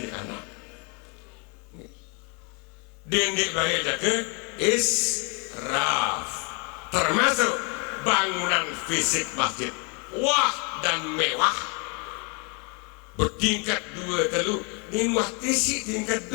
anak dendek bayi jaga israf termasuk bangunan fisik masjid wah dan mewah bertingkat 2 telu nimah tisi tingkat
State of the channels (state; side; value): quieter; right; 34.3 dB